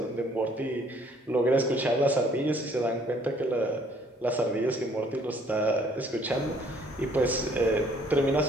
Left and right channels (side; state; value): both; normal; correlation 0.61